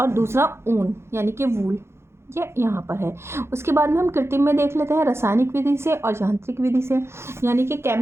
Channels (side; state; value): left; late; 0.12 ms